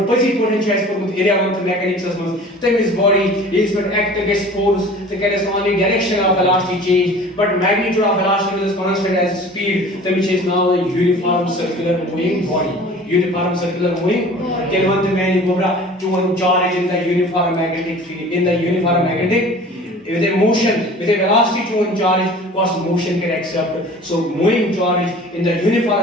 पजी पोटेंशियल एज पर एरिया वन मैकेनिक्स में तब इस body is but act against force तो can is only direction of velocity change but magnitude of velocity is constant as speed which is now a uniform circular moving body kelvan the man gobra to one charge in the uniform magnetic field in the uniform magnetic with a motion with a velocity to one charge cause motion can accept so moving charge in the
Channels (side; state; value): both; normal; correlation 0.44